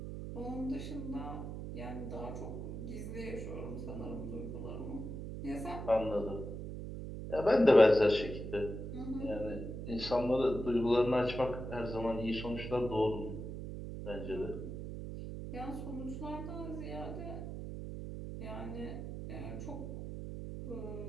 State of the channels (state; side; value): noise; right; hum, 7 dB below the sound